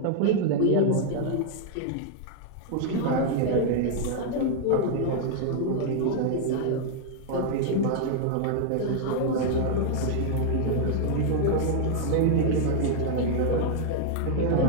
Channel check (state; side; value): different; both; correlation -0.01